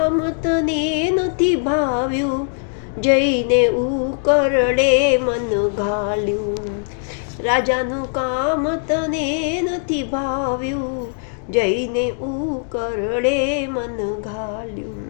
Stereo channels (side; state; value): right; silent; digital silence